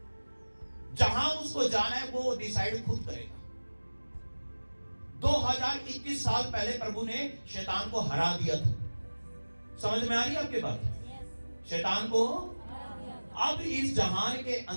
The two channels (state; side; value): inverted; both; correlation -1.00